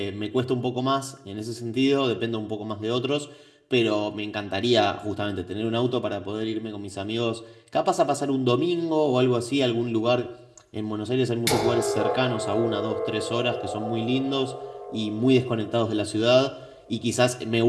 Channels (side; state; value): both; identical; correlation 1.00